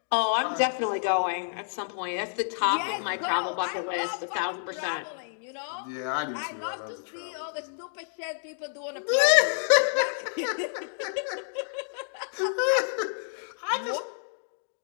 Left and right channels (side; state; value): right; silent; digital silence